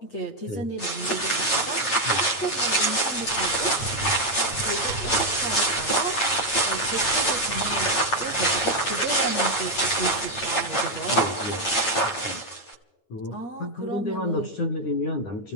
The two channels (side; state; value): right; late; 8.8 ms